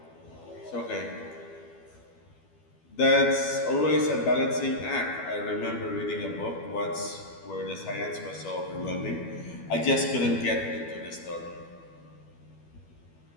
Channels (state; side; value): late; right; 12 ms